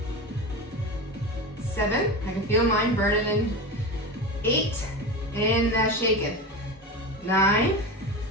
7, I can feel mine burning in. 8, and shaking. 9,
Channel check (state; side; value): normal; both; correlation 0.24